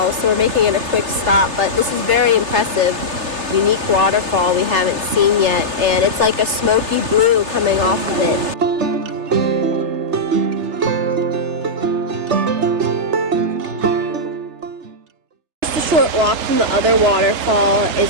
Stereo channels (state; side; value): late; left; 3.3 ms